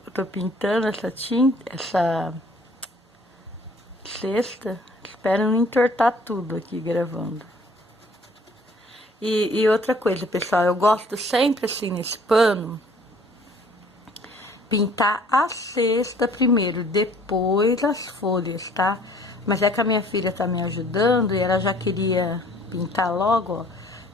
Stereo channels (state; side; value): normal; both; correlation 0.56